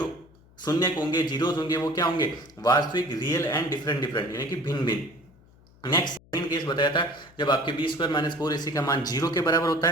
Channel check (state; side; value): noise; left; hum, 27 dB below the sound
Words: शून्य होंगे जीरोज होंगे वो क्या होंगे वास्तविक रियल एंड डिफरेंट यानी कि भिन्न भिन्न। नेक्स्ट सेकंड केस बताया था जब आपके बी स्क्वायर माइनस 4ac का मान 0 के बराबर होता